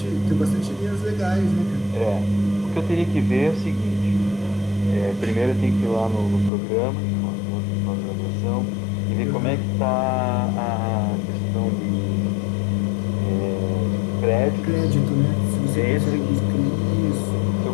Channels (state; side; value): drops out; right; at 6.5 s